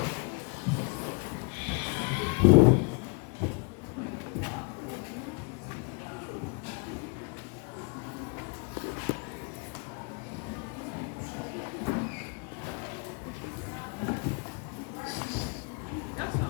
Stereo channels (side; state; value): right; quieter; 34.2 dB